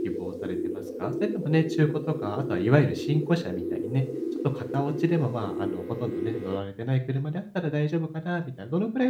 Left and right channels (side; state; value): both; identical; correlation 1.00